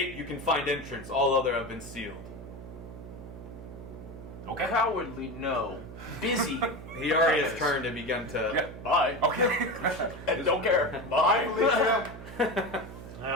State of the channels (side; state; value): right; noise; hum, 13 dB below the sound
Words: you can find entrance. All other have been sealed. Okay. Cowardly, no. Busy. He already has turned and begun to... Yeah. Bye. Okay. And don't care. I Bye. believe you.